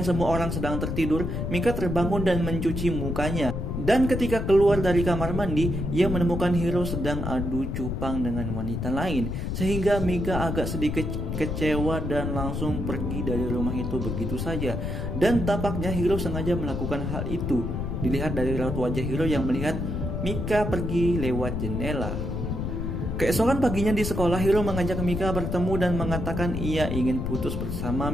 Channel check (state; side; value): noise; left; rumble, 3 dB below the sound